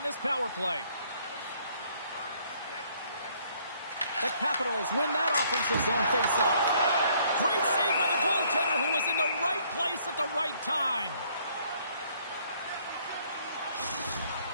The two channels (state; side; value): inverted; both; correlation -0.64